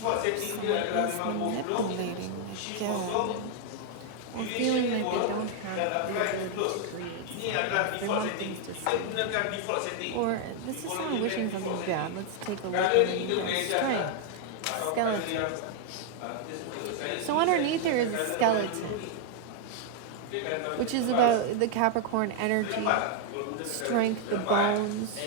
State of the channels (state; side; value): different; both; correlation 0.00